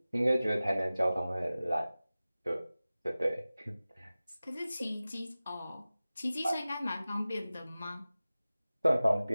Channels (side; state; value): both; inverted; correlation -0.97